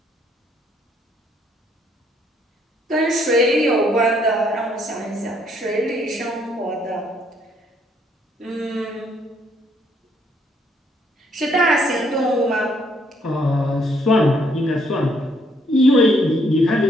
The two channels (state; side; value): normal; both; correlation 0.69